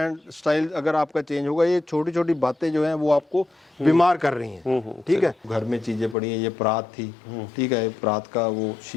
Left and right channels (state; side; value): drops out; right; at 6.2 s